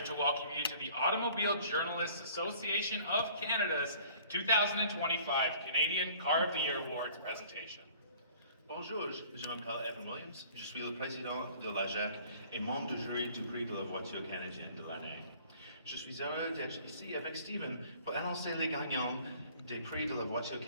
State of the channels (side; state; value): both; inverted; correlation -0.52